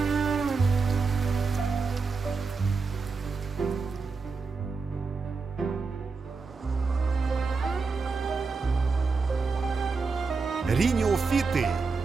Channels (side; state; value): left; quieter; 4.6 dB